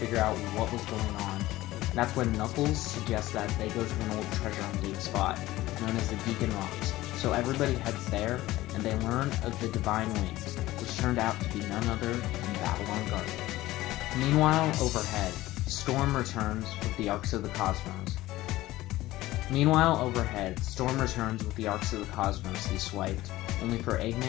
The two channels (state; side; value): quieter; right; 17.0 dB